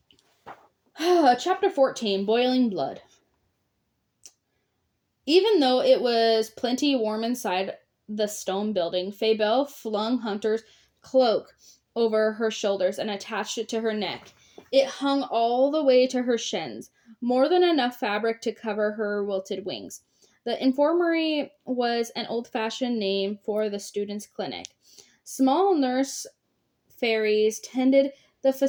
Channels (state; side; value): identical; both; correlation 1.00